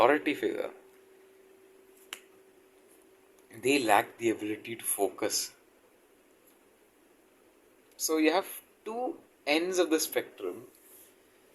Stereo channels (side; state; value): both; identical; correlation 1.00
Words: figure, they lack the ability to focus. So you have two ends of the spectrum